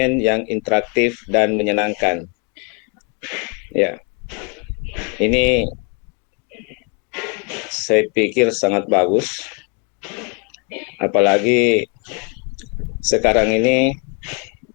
yang interaktif dan menyenangkan. Ya, ini saya pikir sangat bagus, apalagi sekarang ini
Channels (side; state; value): right; quieter; 34.4 dB